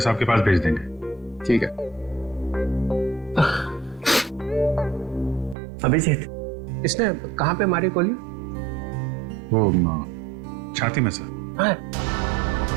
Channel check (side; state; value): left; drops out; at 5.6 s